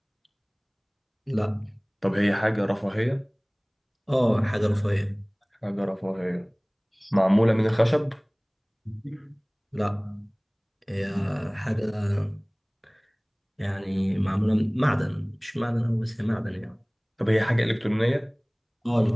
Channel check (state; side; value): identical; both; correlation 1.00